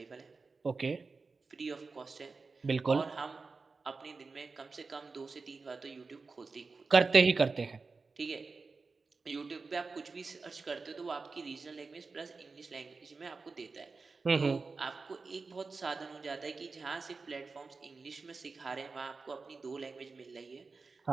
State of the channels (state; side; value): quieter; left; 4.2 dB